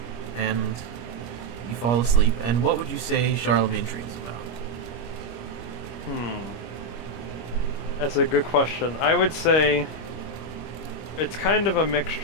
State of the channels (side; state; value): right; late; 25 ms